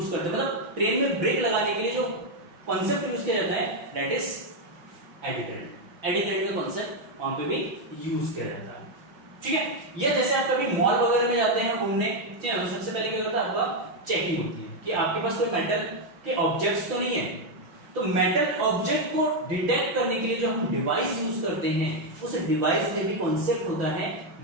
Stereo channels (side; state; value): left; late; 6.0 ms